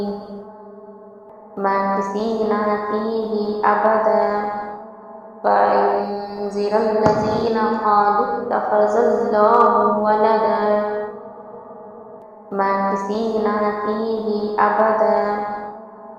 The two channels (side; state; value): both; identical; correlation 1.00